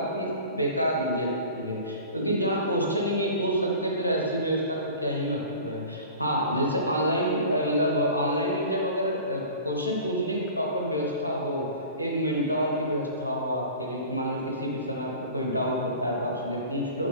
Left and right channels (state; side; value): inverted; both; correlation -0.40